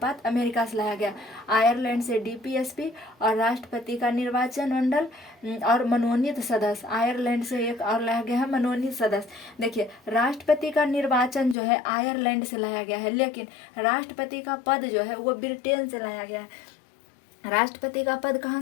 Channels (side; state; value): right; drops out; at 11.6 s